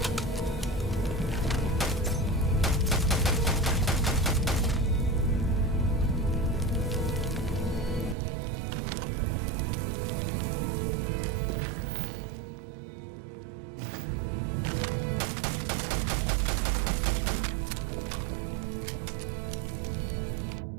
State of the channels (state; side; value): drops out; left; at 8.2 s